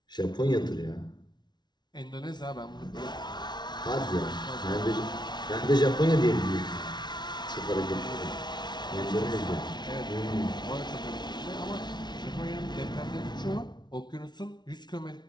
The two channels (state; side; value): late; right; 0.20 ms